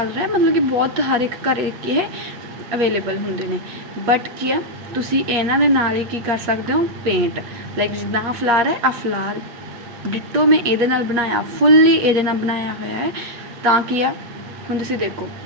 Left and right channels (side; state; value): left; late; 8.5 ms